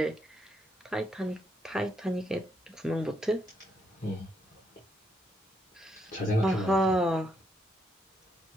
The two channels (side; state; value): both; normal; correlation 0.77